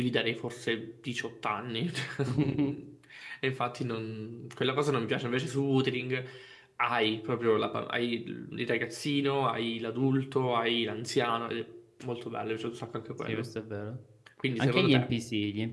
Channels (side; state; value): both; identical; correlation 1.00